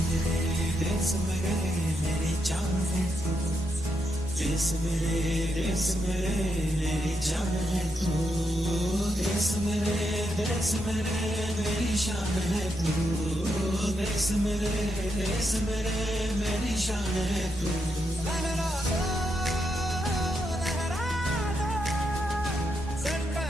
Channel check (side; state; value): both; normal; correlation 0.82